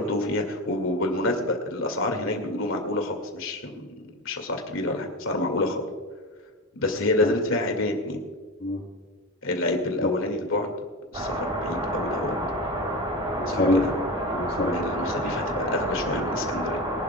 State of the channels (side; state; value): both; normal; correlation 0.23